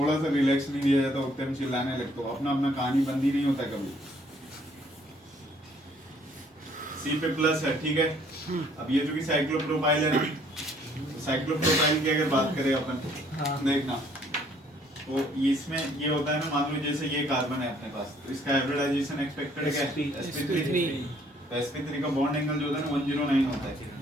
सा रिलैक्स नहीं दिया जाता, उतने में चिल्लाने लगते हो। अपना अपना कहानी बंदी नहीं होता कभी। सी पे प्लस है, ठीक है। अब ये जो कि साइक्लोप्रोपाइल है ना, साइक्लोप्रोपाइल की अगर बात करें अपन, देखना तो इसमें ये होता है ना, मान लो जैसे ये कार्बन है अपने पास, तो इसका हाइब्रिडाइजेशन एक्सपेक्टेड क्या है? sp3। तो sp3 का बॉन्ड एंगल जो होता है ना 109 होता है,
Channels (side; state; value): both; normal; correlation 0.62